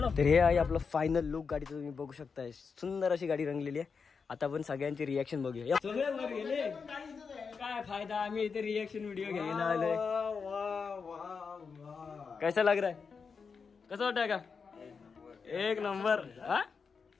तर हे आहे आपलं फायनल लुक गाडीचं, तुम्ही बघू शकताय. सुंदर अशी गाडी रंगलेली आहे. आता आपण सगळ्यांची रिएक्शन बघूया. सगळे वर गेले, काय फायदा, आम्ही इथे रिएक्शन व्हिडिओ घ्यायला आलोय. कैसा लग रहा है? कसं वाटतंय का? एक नंबर. हा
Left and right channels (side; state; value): right; quieter; 5.5 dB